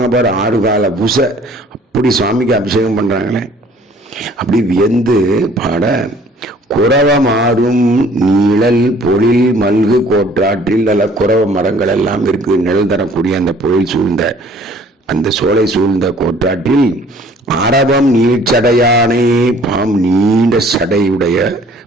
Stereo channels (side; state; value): both; normal; correlation 0.55